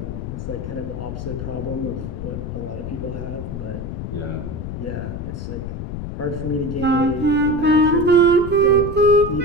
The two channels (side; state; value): left; noise; rumble, 6 dB below the sound